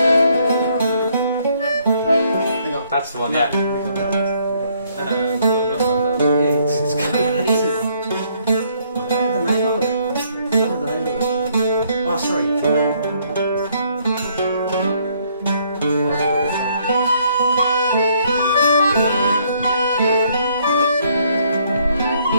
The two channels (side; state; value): both; inverted; correlation -0.67